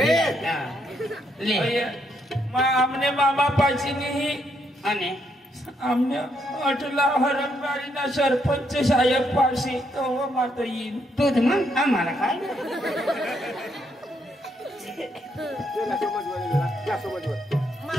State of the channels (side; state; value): both; normal; correlation 0.75